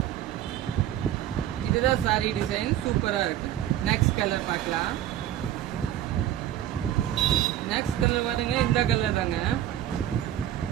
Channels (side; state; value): left; quieter; 12.0 dB